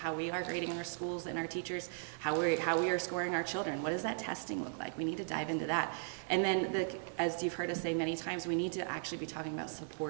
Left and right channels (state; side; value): silent; left; digital silence